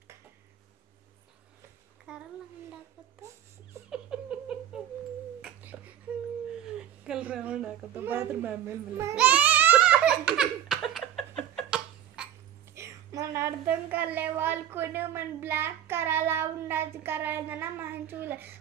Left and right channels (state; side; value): quieter; left; 10.8 dB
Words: करला ఉండకపోతే कल राउंड आका तो बाथरूम में मन अर्थम करले वाल कोने मन ब्लैक कराला ఉండతి करायना మంచుల